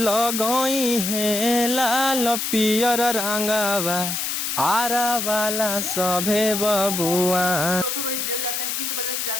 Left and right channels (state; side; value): noise; left; hiss, 2 dB below the sound